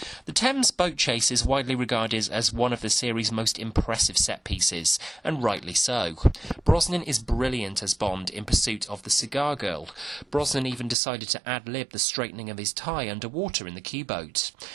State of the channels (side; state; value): left; drops out; at 11.0 s